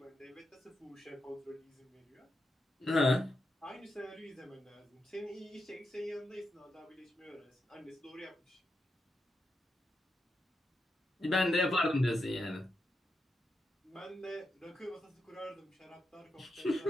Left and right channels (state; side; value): normal; both; correlation 0.85